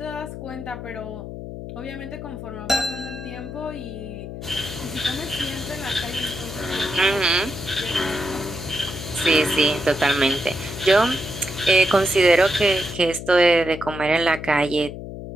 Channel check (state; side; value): noise; left; hum, 9 dB below the sound